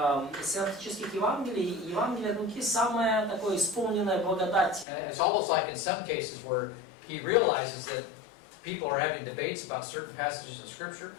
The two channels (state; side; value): drops out; right; at 4.9 s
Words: синоптических Евангелий, Евангелие от Луки самое такое исполненное благодать. And it's almost like in some cases where he realizes that people are having debates about certain passages in Scripture.